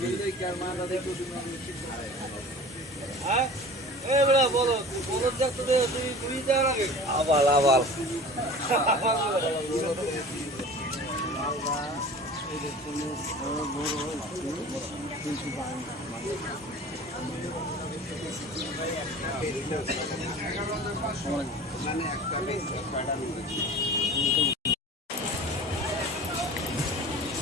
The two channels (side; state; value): both; normal; correlation 0.40